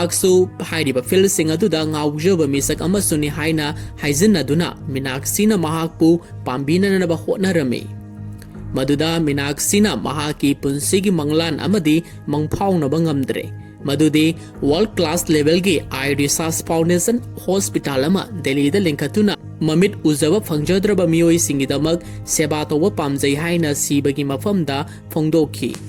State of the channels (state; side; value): identical; both; correlation 1.00